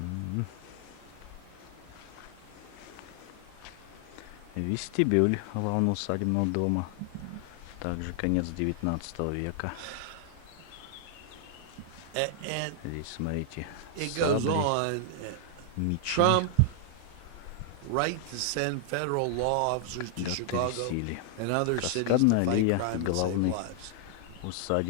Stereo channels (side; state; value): both; different; correlation 0.00